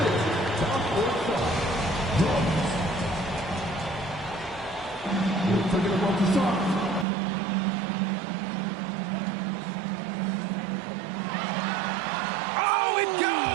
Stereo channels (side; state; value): left; drops out; at 7.1 s